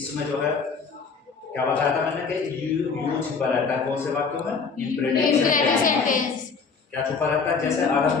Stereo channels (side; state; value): right; quieter; 5.2 dB